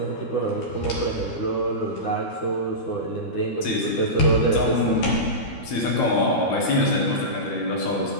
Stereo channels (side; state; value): right; late; 12 ms